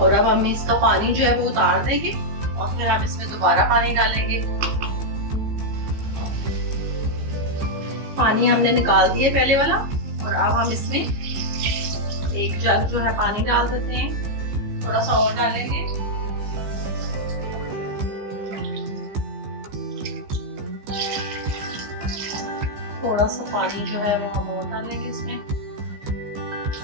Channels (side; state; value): left; late; 15 ms